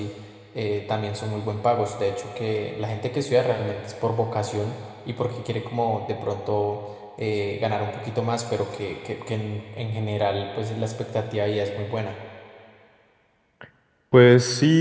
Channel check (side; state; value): both; identical; correlation 1.00